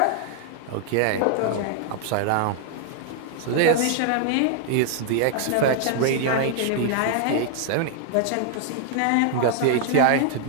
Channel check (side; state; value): both; different; correlation 0.00